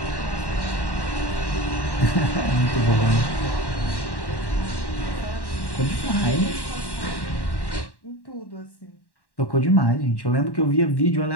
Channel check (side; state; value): right; late; 1.1 ms